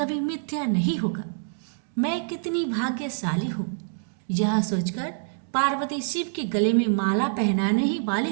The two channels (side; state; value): left; silent; digital silence